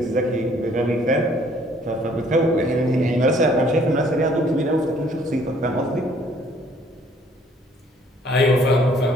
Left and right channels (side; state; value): both; normal; correlation 0.60